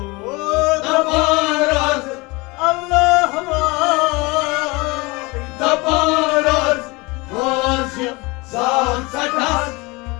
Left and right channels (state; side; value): quieter; right; 25.0 dB